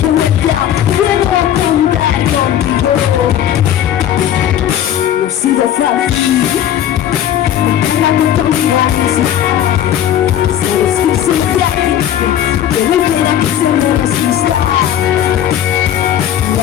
de vuelta, puedo contar contigo. No ha sido fácil, la oportunidad misma. Sabes que soy frágil, que no quiera que se me resista.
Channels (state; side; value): quieter; right; 10.6 dB